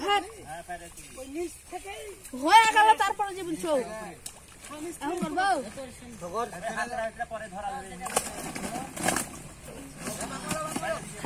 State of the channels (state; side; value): identical; both; correlation 1.00